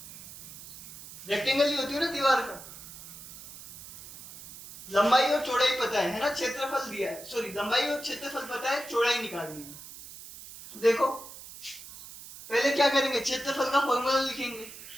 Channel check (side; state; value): right; noise; hiss, 15 dB below the sound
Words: रेक्टेंगल ही होती है ना दीवार का। लंबाई और चौड़ाई पता है ना, क्षेत्रफल दिया है, सॉरी लंबाई और क्षेत्रफल पता है, चौड़ाई निकालनी है। तो देखो पहले क्या करेंगे, क्षेत्रफल का फॉर्मूला लिखेंगे,